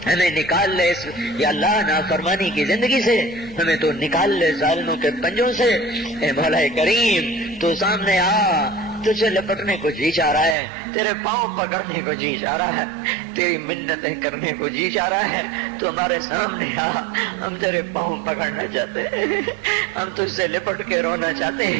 ہمیں نکال لے اس یا اللہ نافرمانی کی زندگی سے، ہمیں تو نکال لے ظالموں کے پنجوں سے۔ اے مولا کریم، تو سامنے آ، تجھے لپٹنے کو جی چاہ رہا ہے، تیرے پاؤں پکڑنے کو جی چاہ رہا ہے، تیری منتیں کرنے کو جی چاہ رہا ہے، تو ہمارے سامنے آ، ہم تیرے پاؤں پکڑنا چاہتے ہیں، ہم تجھ سے لپٹ کے رونا چاہتے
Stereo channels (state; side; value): drops out; left; at 10.6 s